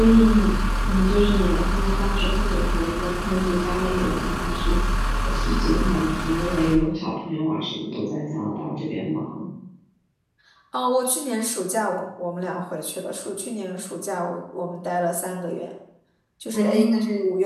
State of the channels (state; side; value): identical; both; correlation 1.00